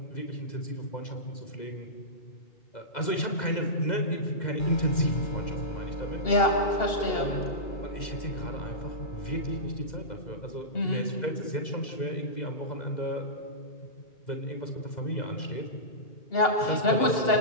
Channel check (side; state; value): right; late; 2.0 ms